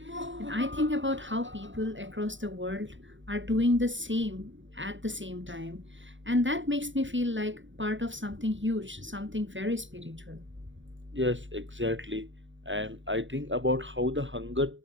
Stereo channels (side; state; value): left; late; 0.55 ms